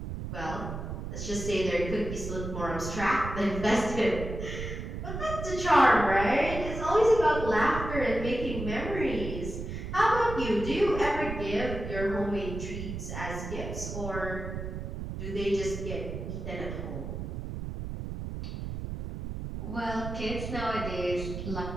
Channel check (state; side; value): noise; right; rumble, 6 dB below the sound